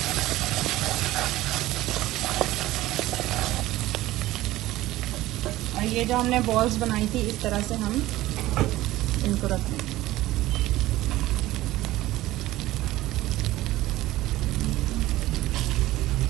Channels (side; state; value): left; quieter; 16.5 dB